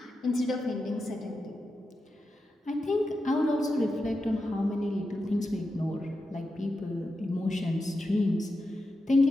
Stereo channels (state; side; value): normal; both; correlation 0.89